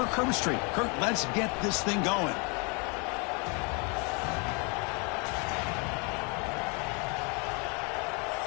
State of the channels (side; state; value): right; quieter; 32.7 dB